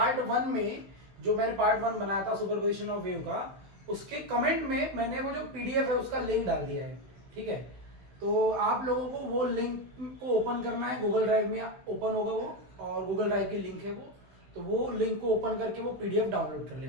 1 में जो मैंने पार्ट 1 बनाया था सुपरपोजिशन ऑफ वेव का, उसके कमेंट में मैंने वो जो पीडीएफ है उसका लिंक डाल दिया है, ठीक है। तो आप लोगों को वो लिंक को ओपन करना है, गूगल ड्राइव में ओपन होगा वो, और गूगल ड्राइव की लिंक है वो। तो वो लिंक को ओपन करके वो पीडीएफ डाउनलोड कर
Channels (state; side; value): late; left; 16 ms